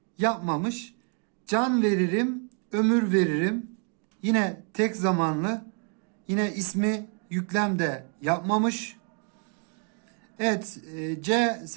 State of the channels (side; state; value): left; quieter; 39.9 dB